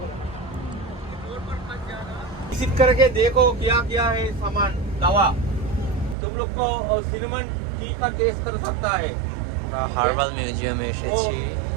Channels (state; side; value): drops out; left; at 6.2 s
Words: विजिट करके देखो क्या क्या है सामान दवा, तुम लोग को सिनेमन टी का टेस्ट कर सकता है। আমরা হার্বাল মিউজিয়ামে এসেছি,